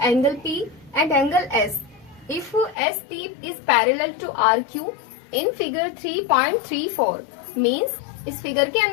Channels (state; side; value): drops out; right; at 2.8 s